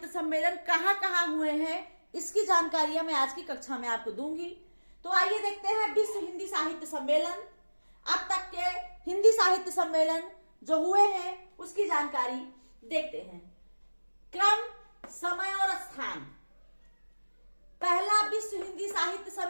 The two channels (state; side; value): inverted; both; correlation -1.00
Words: सम्मेलन कहाँ हुए हैं इसकी जानकारियां मैं आज की कक्षा में आपको दूंगी। तो आइए देखते हैं विश्व हिंदी साहित्य सम्मेलन, अब तक के हिंदी साहित्य सम्मेलन जो हुए हैं उसकी जानकारी देखते हैं। क्रम, समय और स्थान। पहला विश्व हिंदी साहित्य